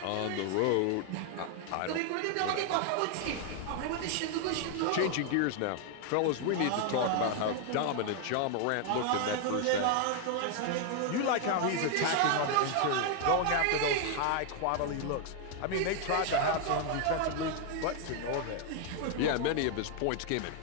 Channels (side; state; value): both; different; correlation 0.00